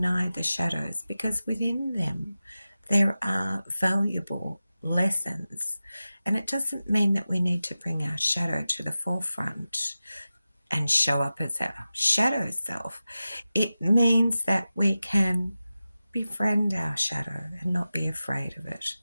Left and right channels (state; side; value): inverted; both; correlation -0.94